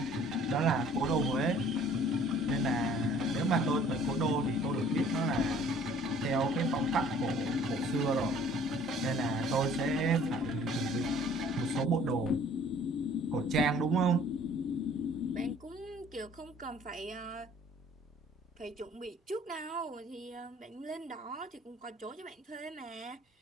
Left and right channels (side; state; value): both; normal; correlation 0.54